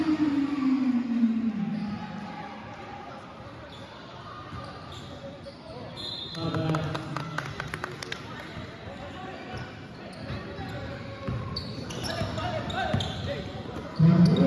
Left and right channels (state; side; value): identical; both; correlation 1.00